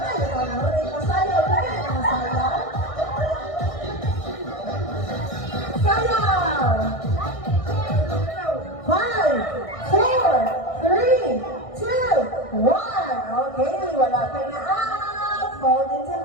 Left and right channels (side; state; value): right; late; 1.6 ms